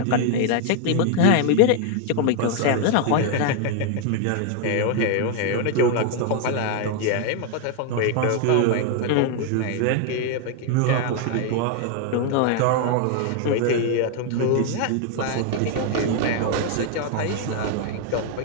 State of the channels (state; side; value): different; both; correlation 0.00